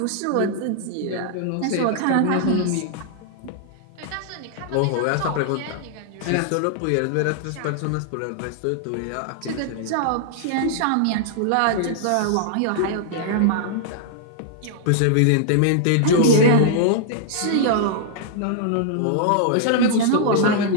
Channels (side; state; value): both; different; correlation -0.01